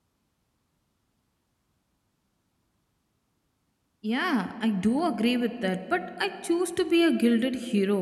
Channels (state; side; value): identical; both; correlation 1.00